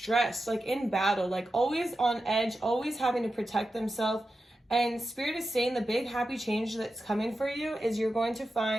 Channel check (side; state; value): both; normal; correlation 0.91